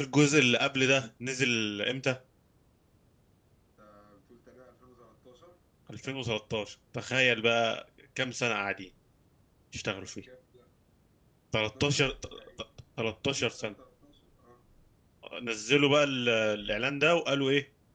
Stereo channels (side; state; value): both; identical; correlation 1.00